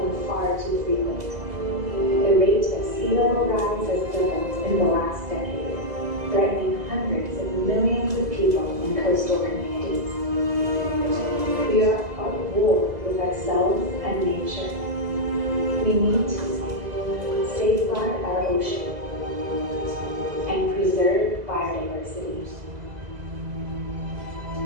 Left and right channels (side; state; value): left; late; 2.0 ms